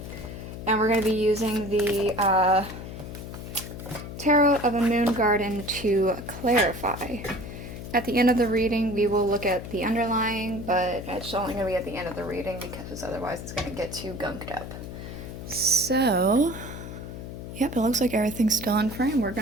And we're going to be using the Tarot of a Moon Garden to clarify. At the end of the reading, we will look at the underlying, but it's only going to be at the end of the reading because otherwise it's going to get too gunked up. So, yep, it looks like everything's still in frame. We're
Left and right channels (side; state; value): left; noise; hum, 10 dB below the sound